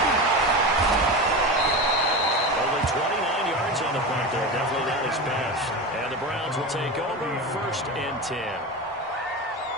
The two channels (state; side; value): normal; both; correlation 0.24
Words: Only 29 yards on the punt there. Definitely not his best. And the Browns will take over 1st and 10.